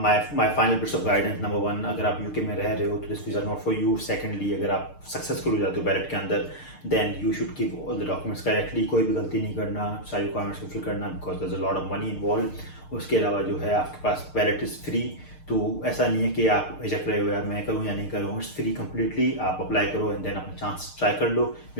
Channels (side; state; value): right; late; 6.6 ms